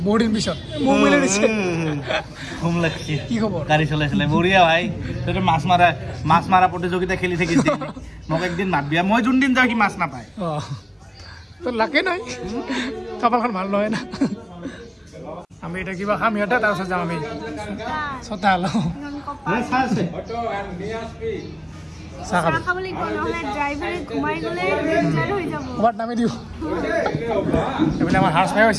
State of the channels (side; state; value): both; identical; correlation 1.00